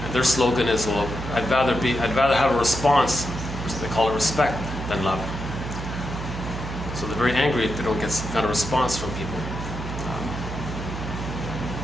their slogan is, well, I'd rather have a response, they call it respect, than love. So they're very angry if they don't get some kind of response from people.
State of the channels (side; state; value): right; noise; hum, 7 dB below the sound